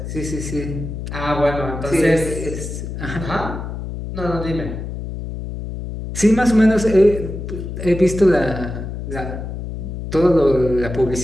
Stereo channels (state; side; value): noise; left; hum, 7 dB below the sound